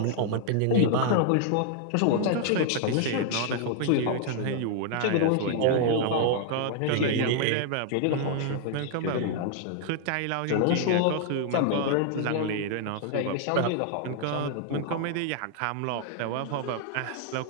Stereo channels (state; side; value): different; both; correlation 0.00